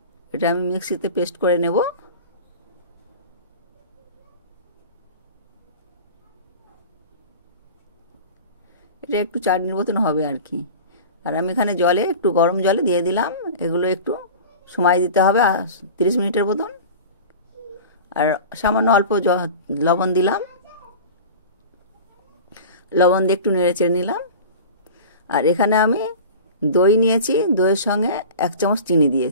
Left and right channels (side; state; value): both; inverted; correlation -0.35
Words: এটা আমি মিক্সিতে পেস্ট করে নেব। এটা একটু চাটনির মতন হবে আর কি। আর আমি এখানে জলে একটু গরম জলে দিয়ে দিলাম। এগুলো একটু সময় দিতে হবে 30 মিনিটের মতন। আর সামান্য অল্প লবণ দিলাম, লবণ দিয়ে একটু নেড়ে চেড়ে নিলাম। আর এখানে আমি দই নিয়েছি, দইয়ের সঙ্গে 1 চামচ চিনি